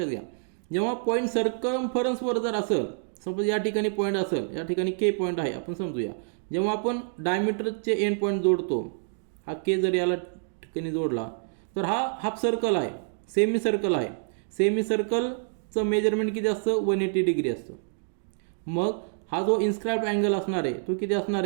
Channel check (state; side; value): silent; left; digital silence